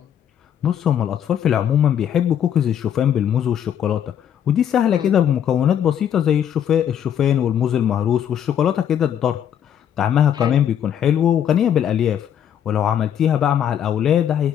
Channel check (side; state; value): right; quieter; 9.4 dB